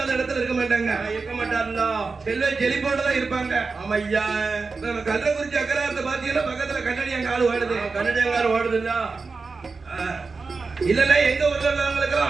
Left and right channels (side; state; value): left; quieter; 4.3 dB